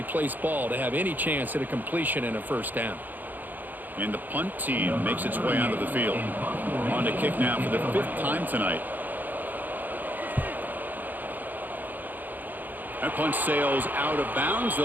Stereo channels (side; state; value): left; late; 0.085 ms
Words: placed ball to have any chance at a completion and a first down. And the punt team makes its way onto the field. On to kick now for the 5th time tonight. That punt sails out of bounds.